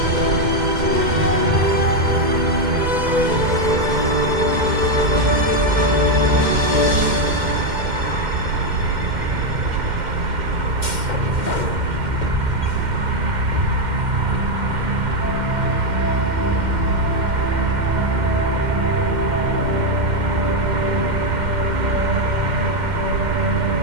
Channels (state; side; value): late; left; 2.1 ms